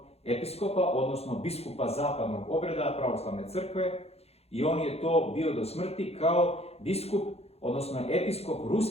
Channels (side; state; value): right; late; 0.30 ms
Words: episkopa, odnosno biskupa zapadnog obreda pravoslavne crkve, i on je to bio do smrti kao biskup, odnosno episkop